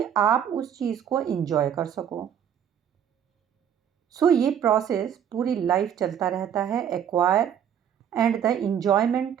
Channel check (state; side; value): quieter; left; 9.0 dB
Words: आप उस चीज़ को एंजॉय कर सको। सो ये प्रोसेस पूरी लाइफ चलता रहता है, acquire and the enjoyment,